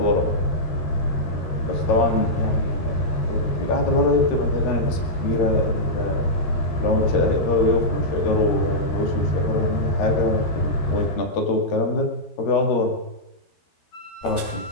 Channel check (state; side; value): late; right; 13 ms